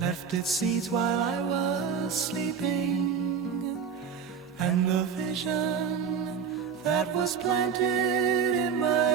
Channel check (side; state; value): left; quieter; 6.8 dB